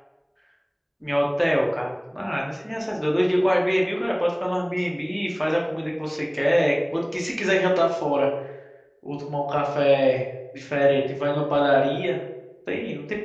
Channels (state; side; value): identical; both; correlation 1.00